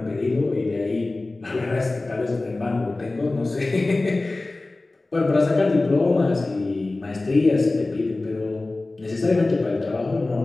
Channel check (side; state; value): right; quieter; 3.1 dB